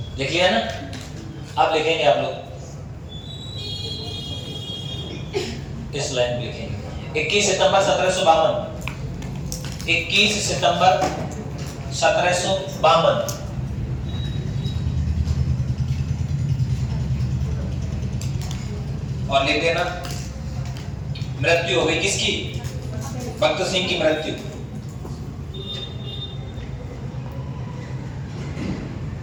लिख लिया ना अब लिखेंगे आप लोग इस लाइन में लिखेंगे 21 सितंबर 1752 21 सितंबर 1752 और लिख देना मृत्यु हो गई किसकी भक्त सिंह की मृत्यु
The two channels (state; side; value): identical; both; correlation 1.00